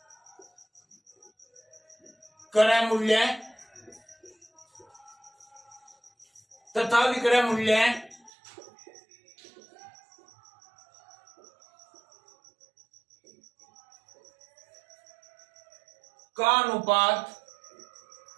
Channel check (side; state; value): left; drops out; at 8.3 s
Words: क्रय मूल्य तथा विक्रय मूल्य का अनुपात